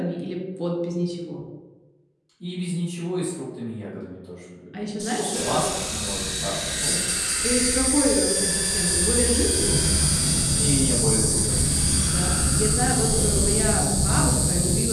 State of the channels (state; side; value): identical; both; correlation 1.00